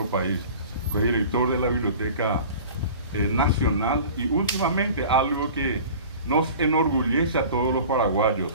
país. Fue director de la Biblioteca Nacional y últimamente algo que nos enorgullece a todos los paraguayos,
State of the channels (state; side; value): inverted; both; correlation -0.41